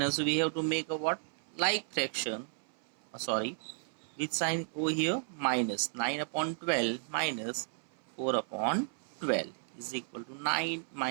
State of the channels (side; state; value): left; silent; 55 dB below the other